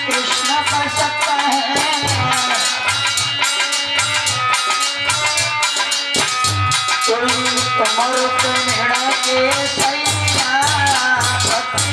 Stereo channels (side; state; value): both; identical; correlation 1.00